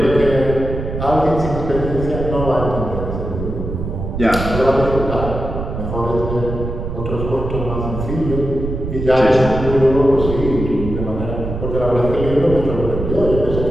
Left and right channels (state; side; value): noise; right; rumble, 5 dB below the sound